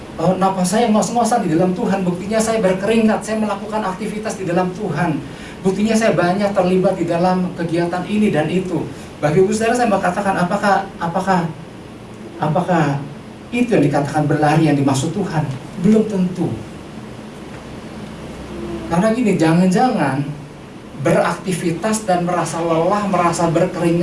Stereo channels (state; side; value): identical; both; correlation 1.00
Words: napas saya ngos-ngosan di dalam Tuhan, buktinya saya berkeringat, saya melakukan aktivitas di dalam Tuhan, buktinya saya banyak terlibat di dalam kegiatan ini dan itu. Bagi Ibu Saudara, saya mau katakan, apakah itu yang dikatakan berlari yang dimaksud Tuhan? Belum tentu. Karena gini, jangan-jangan beraktivitas dan merasa lelah, merasa